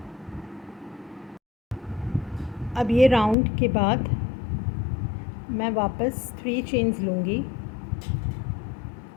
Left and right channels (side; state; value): right; drops out; at 3.4 s